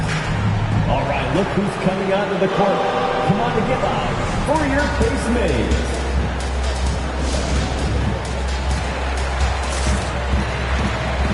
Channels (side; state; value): both; identical; correlation 1.00